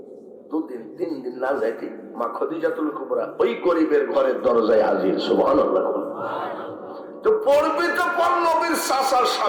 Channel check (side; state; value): both; identical; correlation 1.00